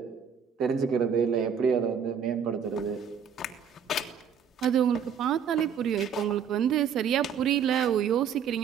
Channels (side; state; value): left; quieter; 7.3 dB